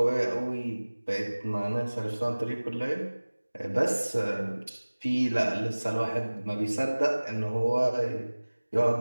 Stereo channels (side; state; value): both; inverted; correlation -1.00